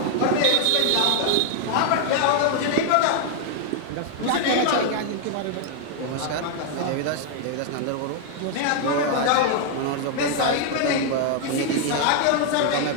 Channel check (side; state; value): both; different; correlation 0.00